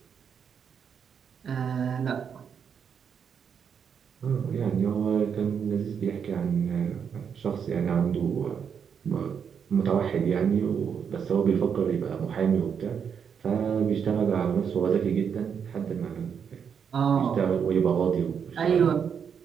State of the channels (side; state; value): left; quieter; 7.2 dB